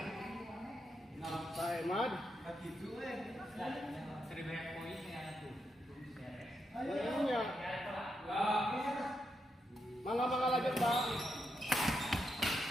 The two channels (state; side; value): normal; both; correlation 0.83